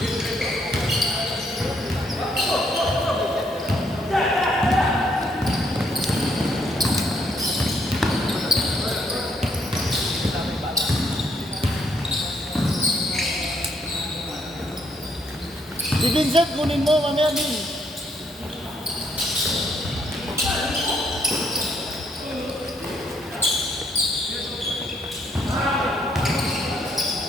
Si Vincent, kunin mo, mamaya din.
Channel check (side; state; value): both; normal; correlation 0.72